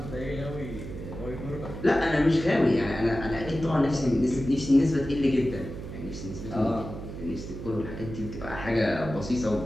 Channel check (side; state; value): right; noise; hum, 9 dB below the sound